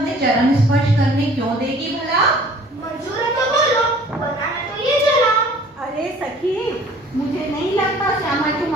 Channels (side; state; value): both; normal; correlation 0.52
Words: चरण स्पर्श करने क्यों देगी भला? मंजूर है तो बोलो, वरना मैं तो ये चला। अरे सखी, मुझे नहीं लगता श्यामा तू